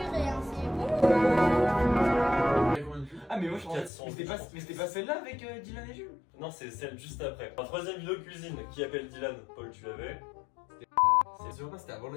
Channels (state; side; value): drops out; right; at 3.9 s